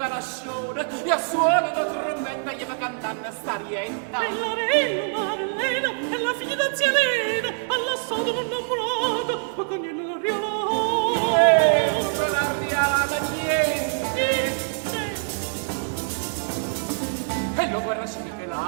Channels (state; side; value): silent; left; digital silence